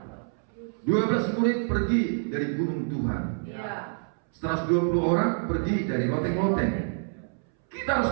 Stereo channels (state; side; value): silent; left; 60 dB below the other